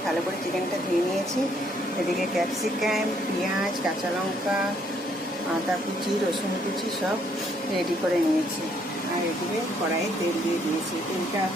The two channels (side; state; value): both; normal; correlation 0.68